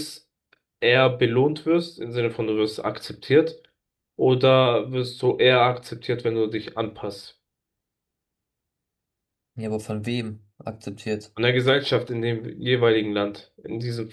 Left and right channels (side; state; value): both; identical; correlation 1.00